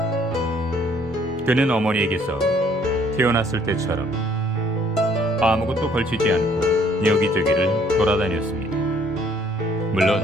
그는 어머니에게서 태어났을 때처럼 아무것도 걸치지 않고 여기저기를 돌아다녔습니다.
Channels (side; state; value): both; normal; correlation 0.62